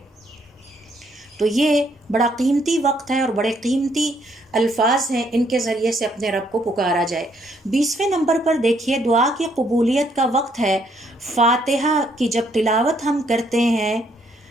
تو یہ بڑا قیمتی وقت ہے اور بڑے قیمتی الفاظ ہیں، ان کے ذریعے سے اپنے رب کو پکارا جائے۔ 20ویں نمبر پر دیکھیے، دعا کی قبولیت کا وقت ہے فاتحہ کی جب تلاوت ہم کرتے ہیں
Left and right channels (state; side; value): normal; both; correlation 0.70